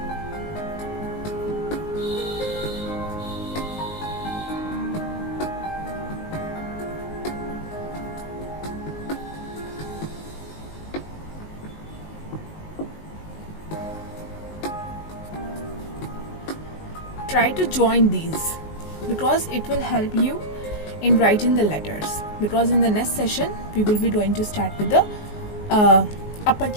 Try to join these because it will help you in writing the letters, because in the next session we will be going to start with the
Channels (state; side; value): late; right; 19 ms